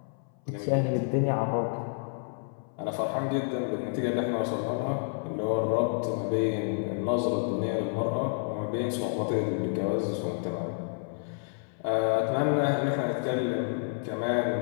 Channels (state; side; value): silent; right; 57 dB below the other